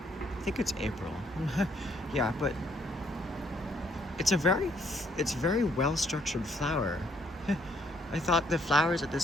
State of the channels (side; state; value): both; normal; correlation 0.68